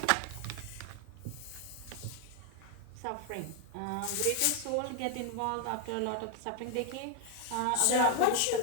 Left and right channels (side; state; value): both; different; correlation 0.00